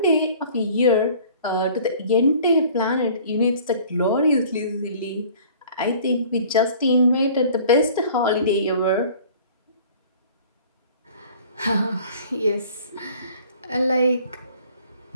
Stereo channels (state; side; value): inverted; both; correlation -0.50